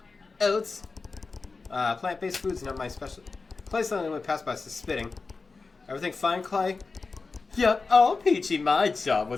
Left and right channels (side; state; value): right; quieter; 4.2 dB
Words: Oats. Plant-based food's not my specialty. Clay suddenly went past by spitting. Everything fine, Clay? Yup, oh Peachy, my job